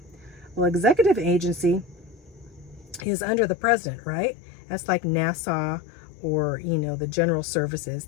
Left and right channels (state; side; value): drops out; right; at 3.1 s